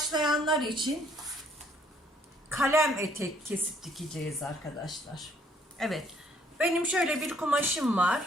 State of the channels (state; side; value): normal; both; correlation 0.64